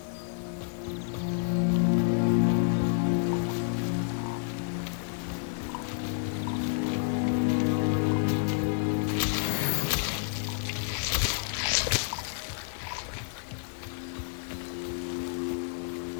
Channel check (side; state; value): right; silent; digital silence